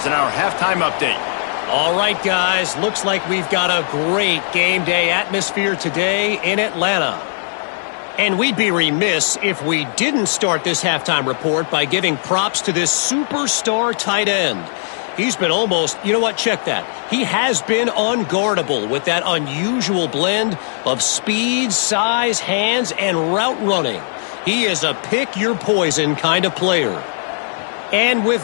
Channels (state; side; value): silent; right; digital silence